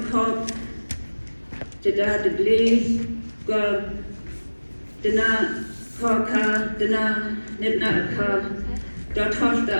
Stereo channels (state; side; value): inverted; both; correlation -1.00